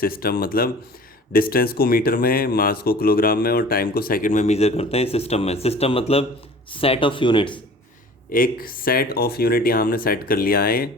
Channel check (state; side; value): normal; both; correlation 0.44